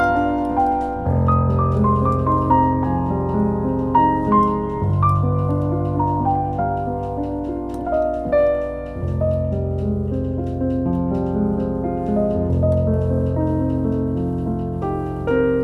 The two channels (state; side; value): identical; both; correlation 1.00